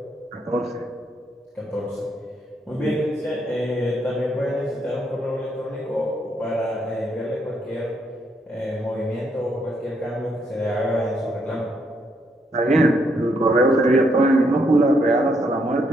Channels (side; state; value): both; normal; correlation 0.75